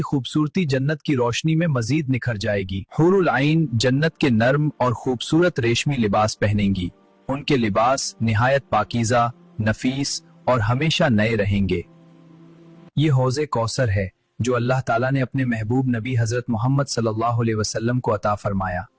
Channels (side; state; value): both; identical; correlation 1.00